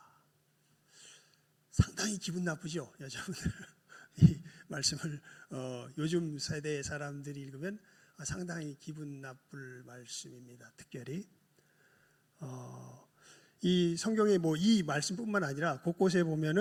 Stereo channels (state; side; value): identical; both; correlation 1.00